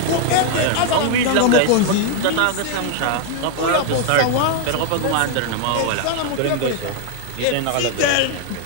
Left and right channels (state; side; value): different; both; correlation 0.00